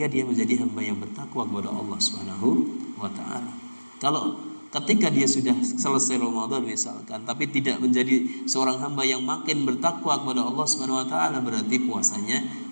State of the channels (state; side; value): inverted; both; correlation -1.00